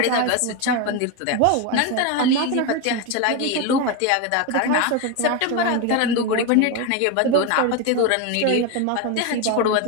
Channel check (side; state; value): both; different; correlation 0.03